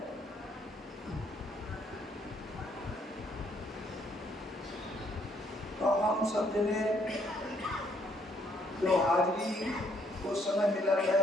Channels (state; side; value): normal; both; correlation 0.69